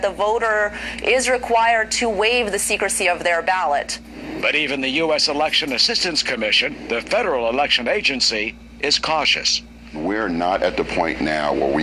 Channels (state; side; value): identical; both; correlation 1.00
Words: the voter is required to waive the secrecy of their ballot. But even the U.S. Election Assistance Commission, the federal election agency, is cautious. We're not at the point now where we